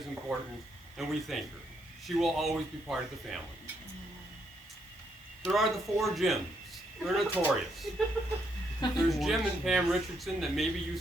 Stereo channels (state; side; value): normal; both; correlation 0.75